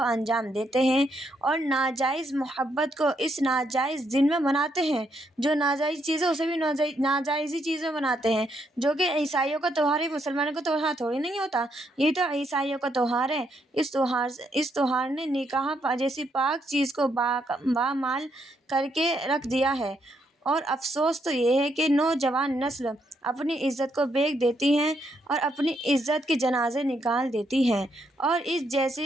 انجام دیتے ہیں، اور ناجائز محبت کو اس ناجائز دن میں مناتے ہیں۔ جو ناجائز چیز ہے اسے بھی ناجائز ہی چیز میں مناتے ہیں، جو کہ عیسائیوں کا تہوار ہے، مسلمانوں کا تہوار تھوڑی نہیں ہوتا، یہ تو عیسائیوں کا تہوار ہے۔ اس تہوار نے نکاح جیسی پاک چیز کو بامال کر کے رکھ دیا ہے، اور افسوس تو یہ ہے کہ نوجوان نسل اپنی عزت کو بیچ دیتی ہے اور اپنی عزت کے جنازے نکال دیتی ہے، اور اس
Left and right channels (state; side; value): normal; both; correlation 0.76